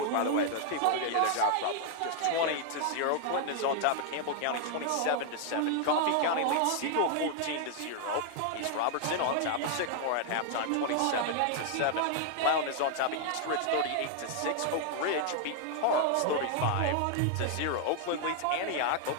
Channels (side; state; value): both; different; correlation 0.00